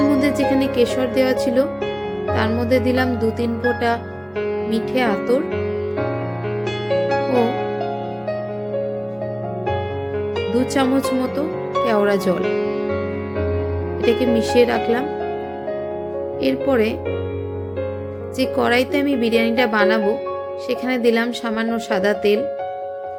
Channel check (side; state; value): both; identical; correlation 1.00